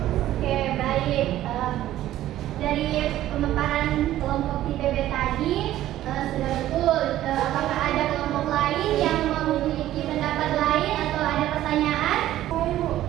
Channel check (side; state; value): left; quieter; 13.6 dB